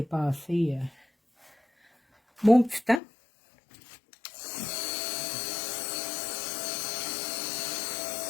mon petit temps.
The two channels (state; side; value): drops out; right; at 3.0 s